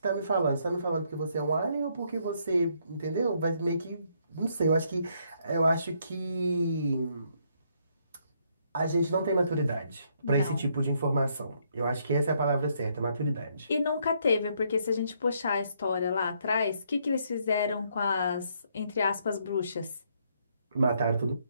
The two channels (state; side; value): inverted; both; correlation -0.72